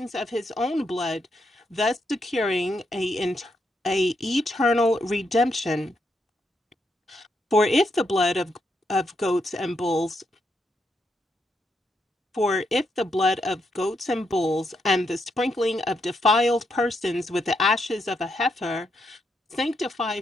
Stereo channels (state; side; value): normal; both; correlation 0.80